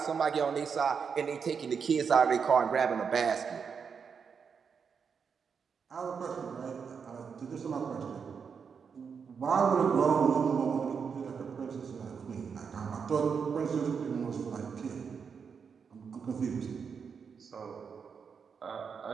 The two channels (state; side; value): quieter; left; 6.2 dB